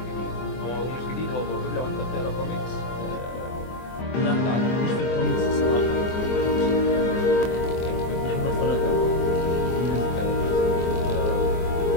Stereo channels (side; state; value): right; late; 24 ms